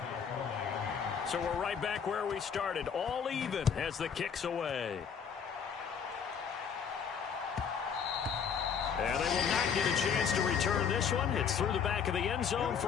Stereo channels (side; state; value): right; quieter; 7.0 dB